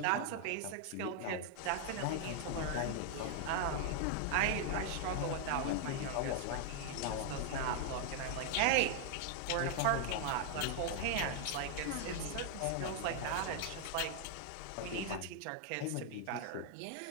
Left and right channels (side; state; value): both; different; correlation 0.00